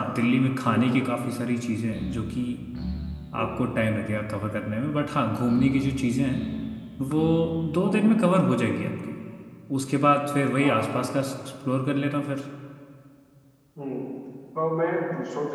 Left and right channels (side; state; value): both; identical; correlation 1.00